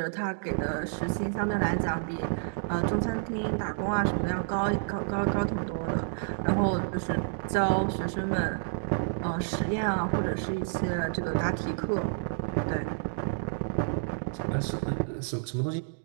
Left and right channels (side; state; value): left; silent; digital silence